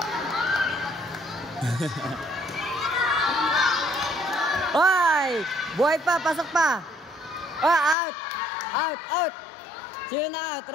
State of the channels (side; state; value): right; drops out; at 8.0 s